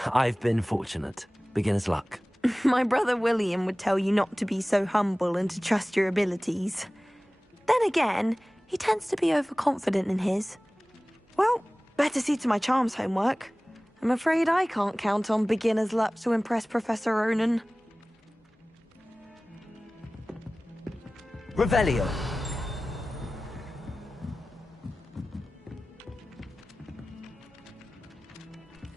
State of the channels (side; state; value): both; normal; correlation 0.98